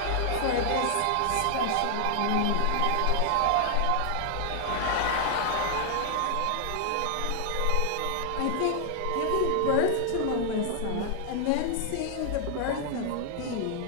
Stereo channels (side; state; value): both; different; correlation 0.00